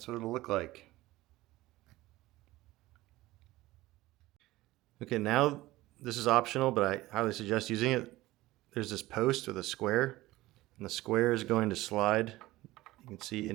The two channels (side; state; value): left; quieter; 17.9 dB